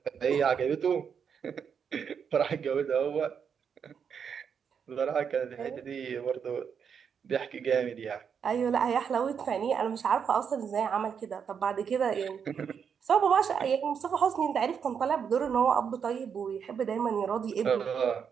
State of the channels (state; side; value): quieter; left; 7.1 dB